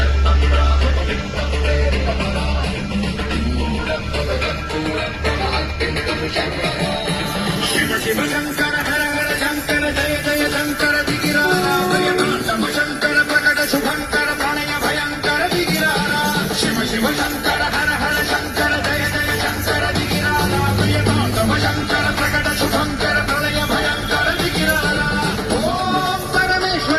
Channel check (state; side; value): identical; both; correlation 1.00